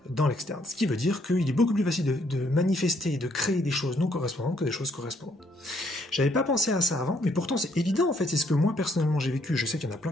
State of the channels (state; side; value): normal; both; correlation 0.69